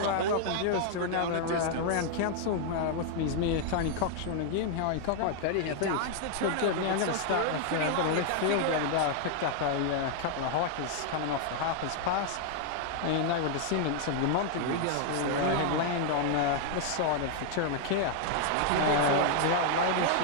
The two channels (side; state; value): both; different; correlation 0.00